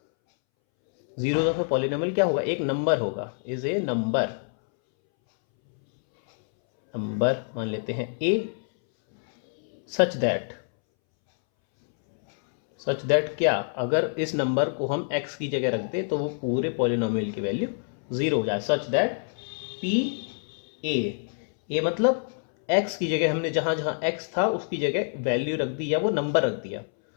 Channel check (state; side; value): silent; right; 61 dB below the other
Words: Zeros of a polynomial क्या होगा, एक नंबर होगा, इज ए नंबर मान लेते हैं ए, सच दैट क्या, अगर इस नंबर को हम x की जगह रख दें तो वो पूरे पॉलिनोमियल की वैल्यू ज़ीरो हो जाए। सच दैट पी ए मतलब x की जगह हमने जहाँ जहाँ x था उसकी जगह वैल्यू रख दी या वो नंबर रख दिया,